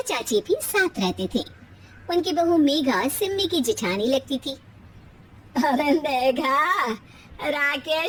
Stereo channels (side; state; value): both; identical; correlation 1.00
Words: चाची भी साथ रहते थे। उनकी बहू मेघा सिम्मी की जेठानी लगती थी। अरे मेघा,